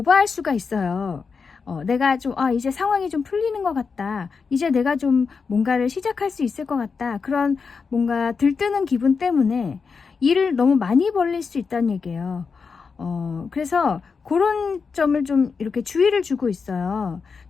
수가 있어요. 내가 좀 이제 상황이 좀 풀리는 것 같다. 이제 내가 좀 뭔가를 시작할 수 있을 것 같다. 그런 뭔가 들뜨는 기분 때문에 일을 너무 많이 벌릴 수 있다는 얘기예요. 그래서 그런 점을 좀 이렇게 주의를 주고 있어요.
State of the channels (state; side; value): quieter; right; 5.3 dB